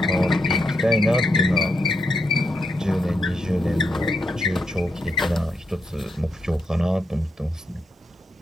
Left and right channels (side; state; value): both; normal; correlation 0.82